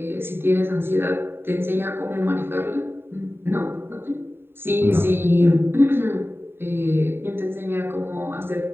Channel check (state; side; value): late; left; 0.11 ms